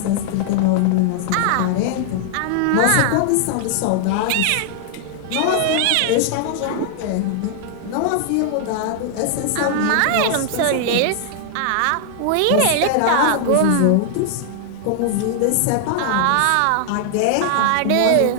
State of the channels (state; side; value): different; both; correlation -0.01